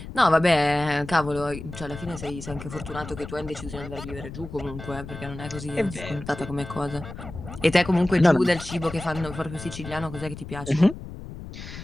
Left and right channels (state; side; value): noise; left; rumble, 11 dB below the sound